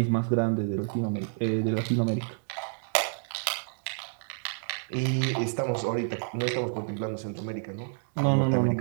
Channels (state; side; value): silent; left; digital silence